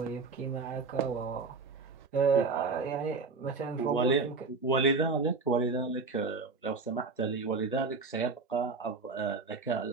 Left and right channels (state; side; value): quieter; left; 4.2 dB